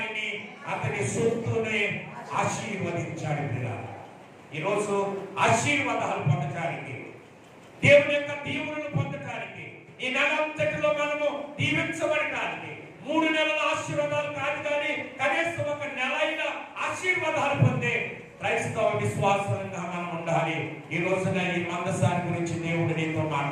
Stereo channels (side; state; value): both; identical; correlation 1.00